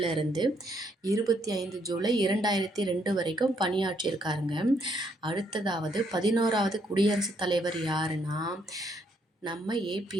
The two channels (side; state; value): both; normal; correlation 0.72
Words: 25 ஜூலை 2002 வரைக்கும் பணியாற்றியிருக்காருங்க. அடுத்ததாவது 11வது குடியரசுத் தலைவர் யாருன்னா நம்ம